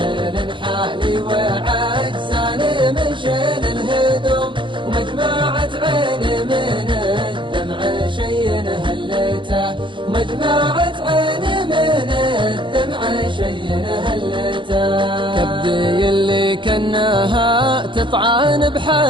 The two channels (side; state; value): left; late; 0.24 ms